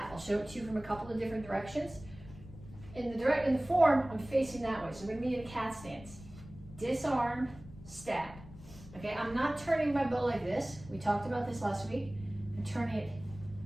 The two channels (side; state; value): left; noise; rumble, 17 dB below the sound